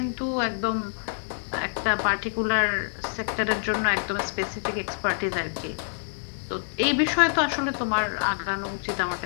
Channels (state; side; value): silent; right; 60 dB below the other